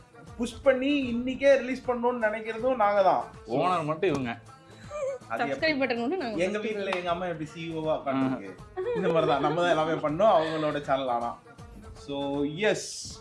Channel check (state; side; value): identical; both; correlation 1.00